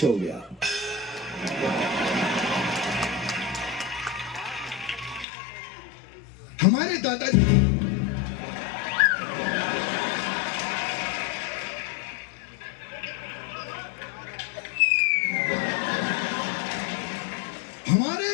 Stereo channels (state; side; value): drops out; right; at 5.2 s